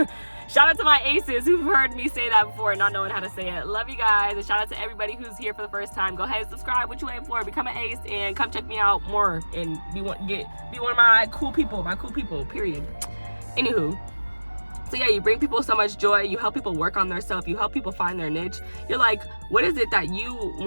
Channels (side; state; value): both; inverted; correlation -1.00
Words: Shout out to my aces who've heard me say that before and not knowing how to say it. Love you guys. And shout out to everybody who's here for the first time. Go ahead and subscribe. What you waiting for? Become an ace and come check me out more and be one of my cool people. Period. Anywho, so yeah, you bring people so much joy. You help people work on themselves. You help people find their niche. You're like, what is it that you